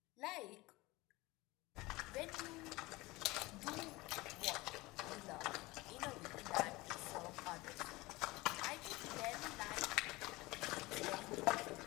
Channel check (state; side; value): quieter; right; 21.3 dB